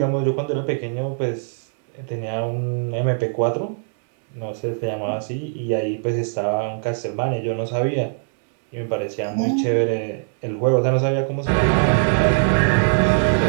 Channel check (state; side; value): silent; left; digital silence